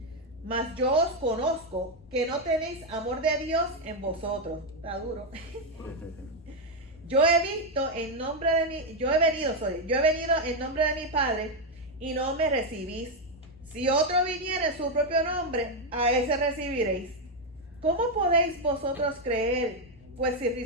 Mas yo os conozco que no tenéis amor de Dios en vosotros. Está duro. Yo he venido en nombre de mi Padre y no me recibís. Si otro viniera en su propio nombre, a ese recibiréis. ¿Cómo podéis vosotros creer? Pues si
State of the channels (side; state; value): both; normal; correlation 0.04